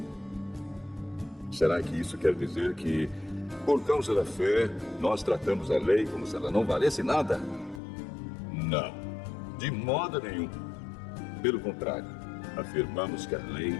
Será que isso quer dizer que, por causa da fé, nós tratamos a lei como se ela não valesse nada? Não, de modo nenhum. Pelo contrário, afirmamos que a lei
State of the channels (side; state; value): right; drops out; at 7.8 s